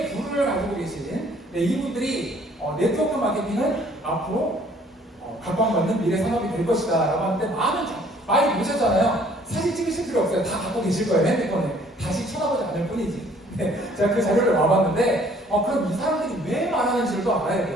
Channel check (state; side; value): normal; both; correlation 0.58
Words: 부를 가지고 계신 이분들이 네트워크 마케팅은 앞으로 각광받는 미래 산업이 될 것이다 라고 하는데 많이 보셨잖아요. 사진 찍으실 필요 없어요. 다 갖고 계실 거예요. 핸드폰에. 다시 쳐다보지 않을 뿐이지. 제가 그 자료를 와봤는데 그럼 이 사람들이 왜 말하는지를 또 알아야